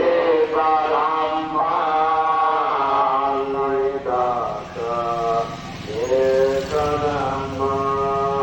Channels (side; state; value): both; identical; correlation 1.00